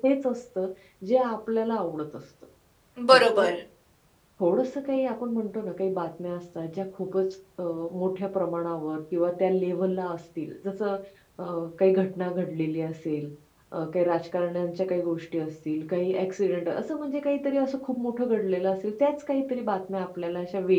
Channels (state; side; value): identical; both; correlation 1.00